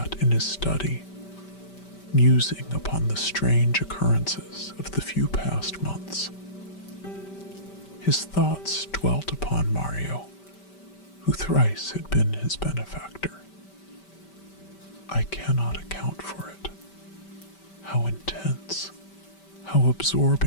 in his study, musing upon the strange occurrences of the few past months. His thoughts dwelt upon Mario, who thrice had been his benefactor. I cannot account for it. How intense, how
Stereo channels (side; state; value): right; late; 5.2 ms